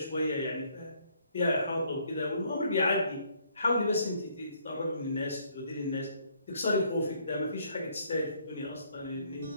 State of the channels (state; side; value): inverted; both; correlation -0.66